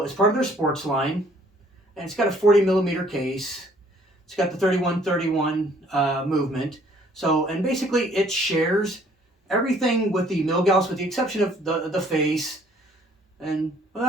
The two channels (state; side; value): normal; both; correlation 0.60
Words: it's part of their sports line, and it's got a 40 millimeter case. It's got the 3131 movement. So, and basically it shares everything with the Milgauss, with the exception of the face, and